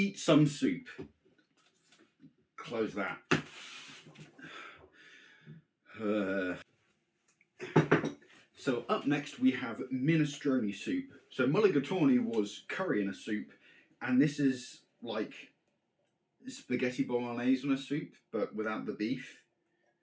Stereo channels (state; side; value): identical; both; correlation 1.00